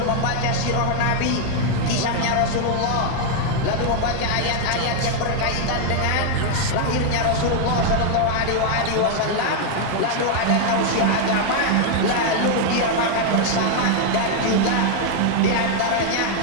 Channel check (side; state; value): both; different; correlation 0.00